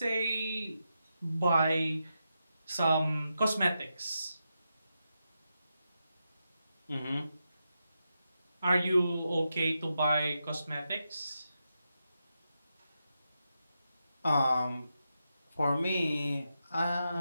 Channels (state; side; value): inverted; both; correlation -0.87